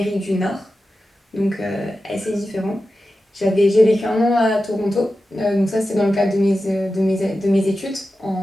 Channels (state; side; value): normal; both; correlation 0.92